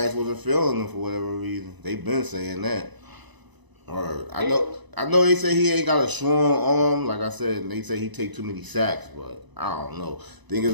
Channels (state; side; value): late; left; 1.0 ms